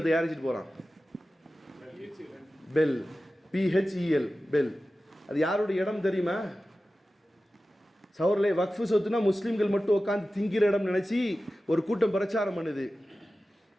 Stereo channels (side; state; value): both; normal; correlation 0.95